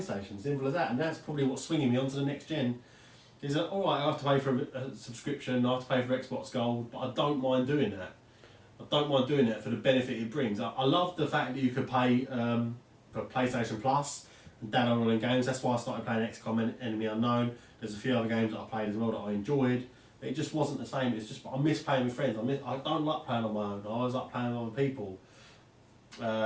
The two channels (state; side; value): identical; both; correlation 1.00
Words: Simple as that. And that's probably what's swinging me onto the next gen. Is that alright? I have to pay for a subscription. I have to pay for Xbox Gold, but I don't mind doing that. I don't mind doing that for the benefit it brings. I love the fact that you could pay for PlayStation Plus and download all the games. That's why I started playing XCOM Enemy Unknown. There's a few other games that I played as well that I enjoyed. It just wasn't the same. It's just I miss playing with friends. I don't like playing on my own. I always like playing with other people.